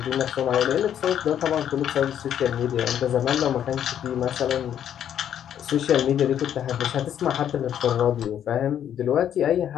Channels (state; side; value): quieter; right; 9.8 dB